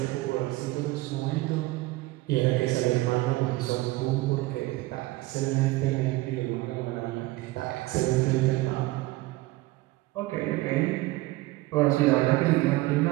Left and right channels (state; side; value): quieter; left; 19.6 dB